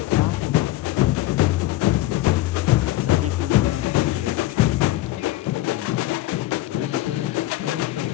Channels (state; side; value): quieter; right; 16.4 dB